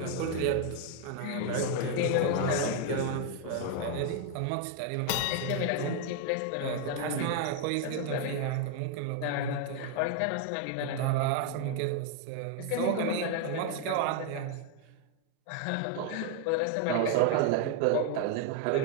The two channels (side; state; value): both; different; correlation 0.00